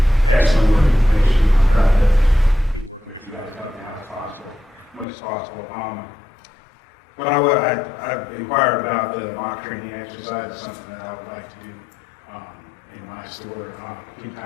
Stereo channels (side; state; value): right; drops out; at 5.1 s